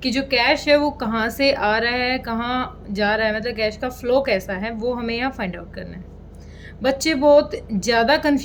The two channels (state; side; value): identical; both; correlation 1.00